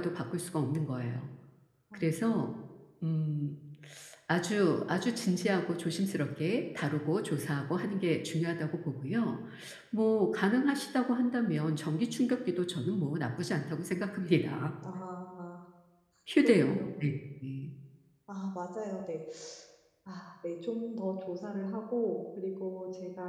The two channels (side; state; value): both; identical; correlation 1.00